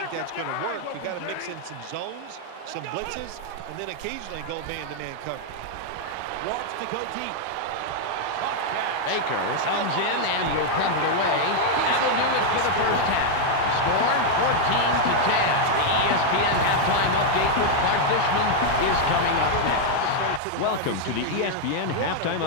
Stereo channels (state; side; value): different; both; correlation 0.00